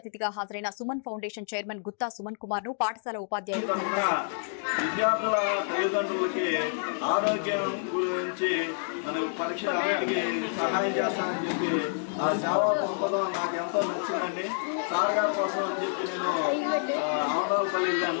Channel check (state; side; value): silent; right; digital silence